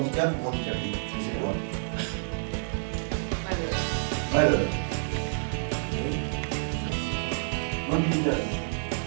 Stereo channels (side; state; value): left; silent; digital silence